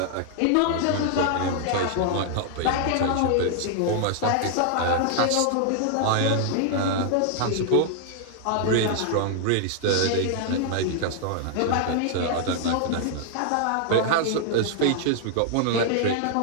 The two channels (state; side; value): different; both; correlation 0.00